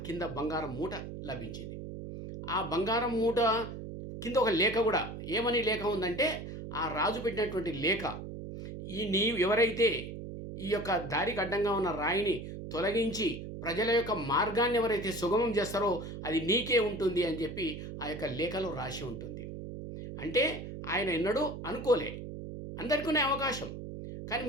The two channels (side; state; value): right; noise; hum, 9 dB below the sound